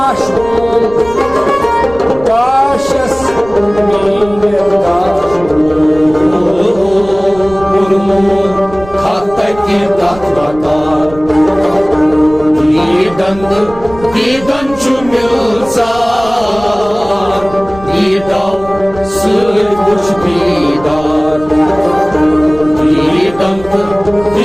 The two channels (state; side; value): noise; right; rumble, 17 dB below the sound